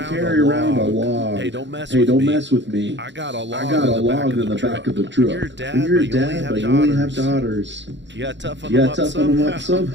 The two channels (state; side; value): late; left; 0.53 ms